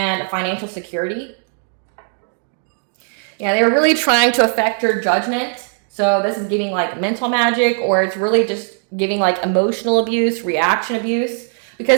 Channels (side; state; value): left; silent; 58 dB below the other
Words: financial security. Yeah, they were really trying to affect your judgment. So this is giving like mental magic, or it's really just giving like emotional abuse, reaction abuse,